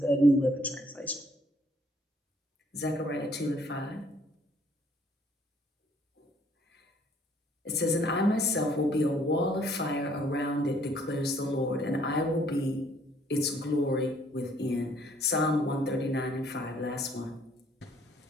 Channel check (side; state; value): both; normal; correlation 0.63